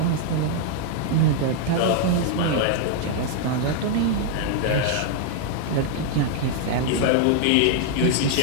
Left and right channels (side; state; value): both; different; correlation 0.00